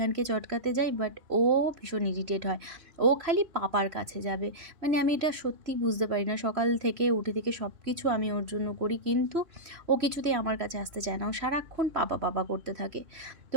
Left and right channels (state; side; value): late; left; 3.0 ms